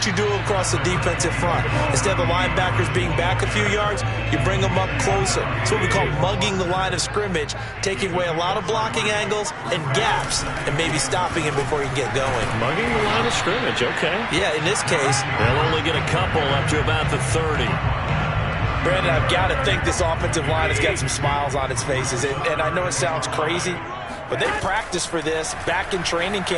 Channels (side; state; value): both; identical; correlation 1.00